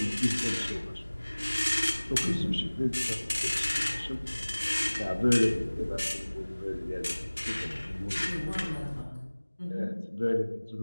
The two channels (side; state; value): both; inverted; correlation -1.00